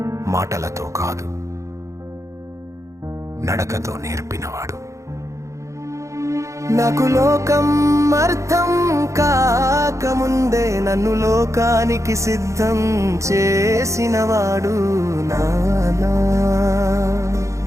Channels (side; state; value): left; late; 0.15 ms